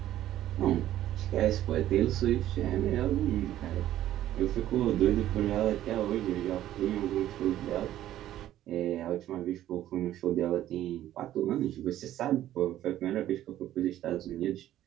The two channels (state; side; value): quieter; left; 12.9 dB